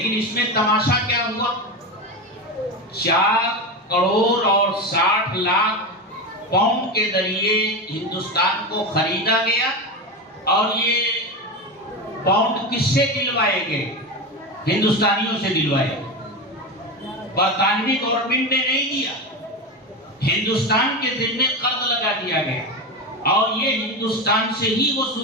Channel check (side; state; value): both; normal; correlation 0.19